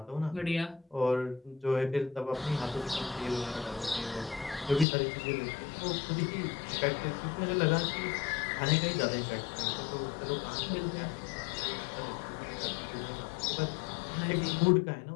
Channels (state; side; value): drops out; right; at 4.9 s